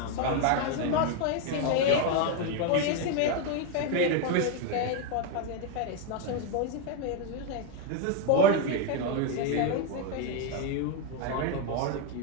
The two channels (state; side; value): different; both; correlation 0.01